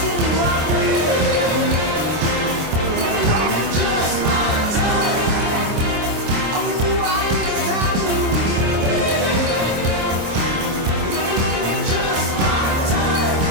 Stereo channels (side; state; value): left; late; 26 ms